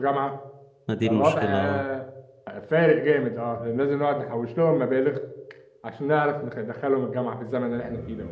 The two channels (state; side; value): identical; both; correlation 1.00